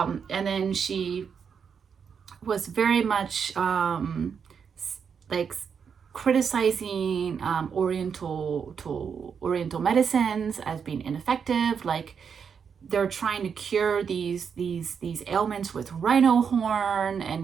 then she was very much like criticizing Oriental medicines as being ineffective. Like they're trying to cure these ailments with rhino horn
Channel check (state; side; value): quieter; left; 6.7 dB